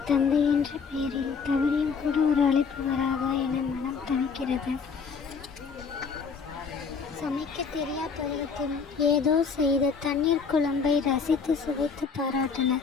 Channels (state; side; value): quieter; right; 5.6 dB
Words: தந்தை என்ற பெயரில் தவறியும் கூட ஒரு அழைப்பு வராதா என மனம் தவிக்கிறது. சமைக்க தெரியா பருவத்தில் ஏதோ செய்த தண்ணீர் குழம்பை ரசித்து சுவைத்து